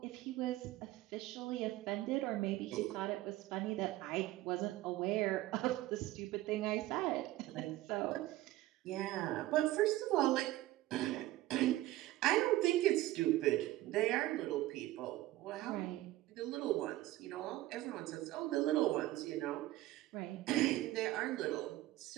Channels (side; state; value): left; quieter; 16.4 dB